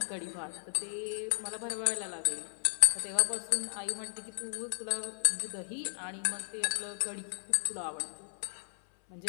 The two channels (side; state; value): right; silent; 55 dB below the other